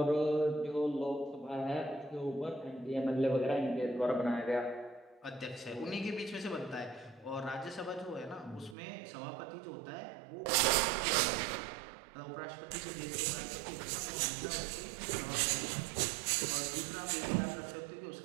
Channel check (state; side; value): drops out; left; at 8.8 s